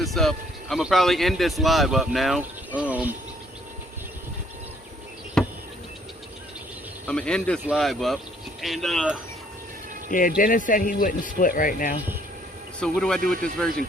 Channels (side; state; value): both; normal; correlation 0.63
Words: up. I'm gonna probably end this live up now. I'm gonna end this live up, and yeah, Dennis said he wouldn't split right now. So what do I do with this virgin